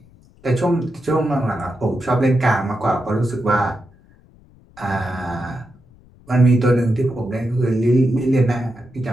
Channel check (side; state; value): left; noise; rumble, 27 dB below the sound